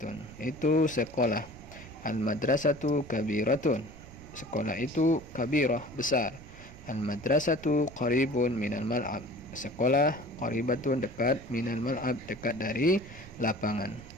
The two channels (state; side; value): noise; right; rumble, 17 dB below the sound